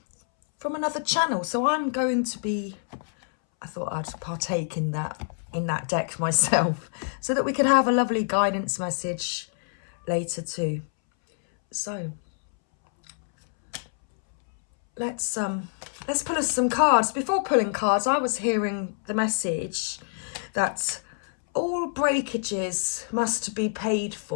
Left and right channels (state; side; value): silent; right; 61 dB below the other